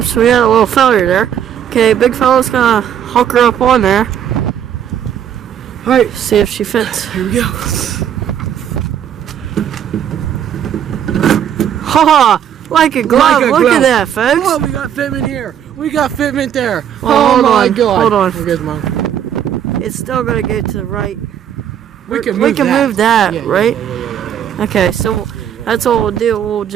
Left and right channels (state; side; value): quieter; left; 9.5 dB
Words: we had a little failure there. Okay, big fella's gonna hook her up on there. Alright, See if she fits. here we go. Haha! Like a glove. Like a Look glove. at that, folks. Oh, we got fitment here. We got fitment there. Well, oh hold my on, god. hold on. Here goes mine. It's still gonna go to the right. We can move that, Yeah, right? Yeah. Okay, so that's what we'll do. We'll